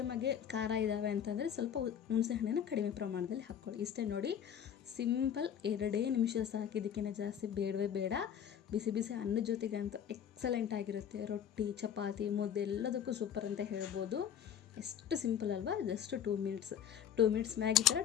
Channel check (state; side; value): quieter; right; 8.9 dB